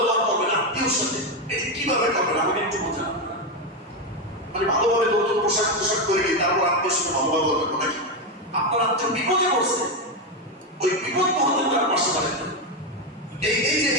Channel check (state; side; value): normal; both; correlation 0.09